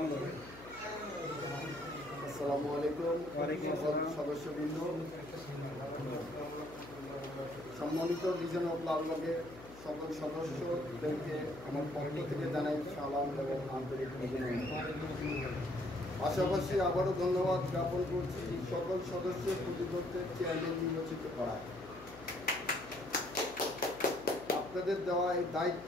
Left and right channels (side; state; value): left; noise; hum, 17 dB below the sound